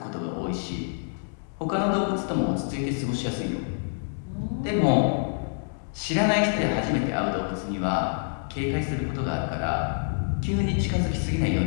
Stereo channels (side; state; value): right; silent; digital silence